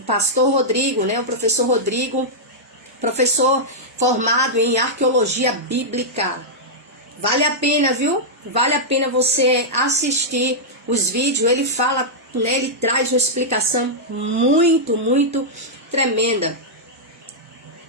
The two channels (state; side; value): normal; both; correlation -0.08